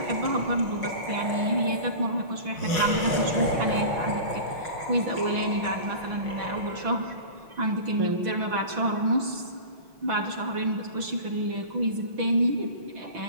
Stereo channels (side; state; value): left; late; 6.1 ms